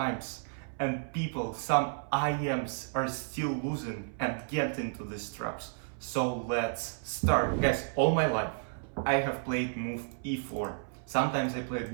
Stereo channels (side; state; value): left; silent; 56 dB below the other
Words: and people, some IMs are still losing and get into these traps. So let's start. Guys, all my life I have played move e4. Sometimes I